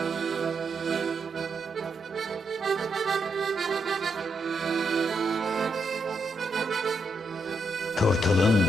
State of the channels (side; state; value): both; normal; correlation 0.80